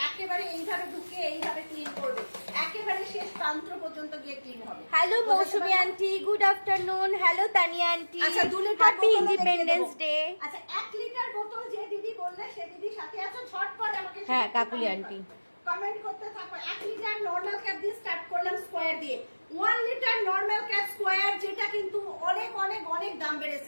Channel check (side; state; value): both; inverted; correlation -1.00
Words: একেবারে এইভাবে ঢুকে এইভাবে ক্লিন করবে, একেবারে শেষ প্রান্ত পর্যন্ত গিয়ে ক্লিন হবে। Hello Mousumi aunty, good afternoon. Hello Tania aunty, আচ্ছা 2 লিটার হ্যাপি ইন্ডিপেন্ডেন্স ডে। আচ্ছা 1 লিটার বোতল যে দিদি বললে সে দিদি সাথে আছো, ঝটপট আমাকে হ্যাঁ কাকুলি আন্টি কমেন্ট করতে থাকো। 1 লিটার নরমাল ক্যাপ দিয়ে স্টার্ট করলাম স্কয়ার দিয়ে। 1 লিটার নরমাল ক্যাপ স্কয়ার, যেটা কিন্তু অনেক অনেক অনেক দাম